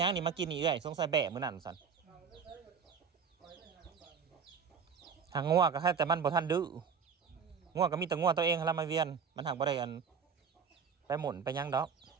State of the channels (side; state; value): left; quieter; 6.3 dB